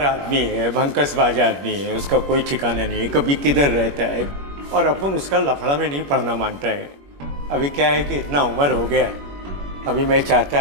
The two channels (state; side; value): late; left; 21 ms